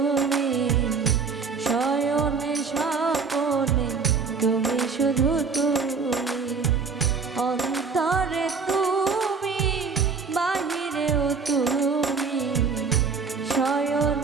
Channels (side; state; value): left; quieter; 5.1 dB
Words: শয়নে স্বপনে তুমি শুধু তুমি, অন্তরে তুমি, বাহিরেও তুমি,